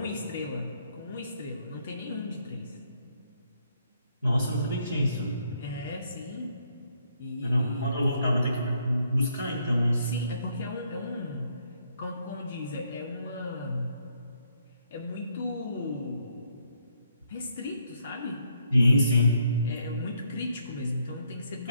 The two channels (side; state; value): both; inverted; correlation -0.72